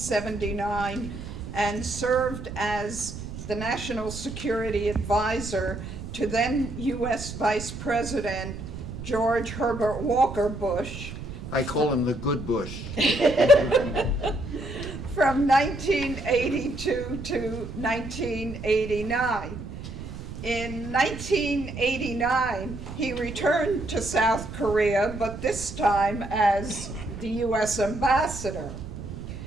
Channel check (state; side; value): noise; right; rumble, 10 dB below the sound